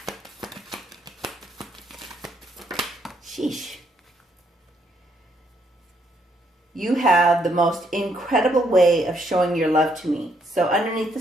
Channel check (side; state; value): both; normal; correlation 0.72